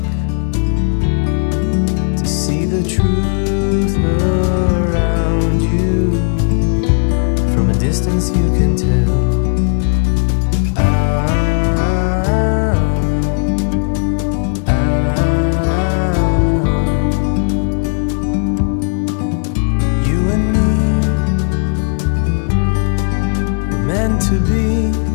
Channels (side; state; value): right; silent; 56 dB below the other